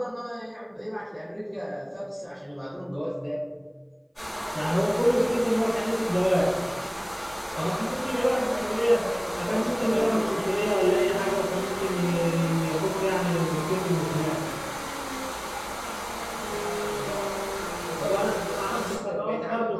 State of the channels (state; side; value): identical; both; correlation 1.00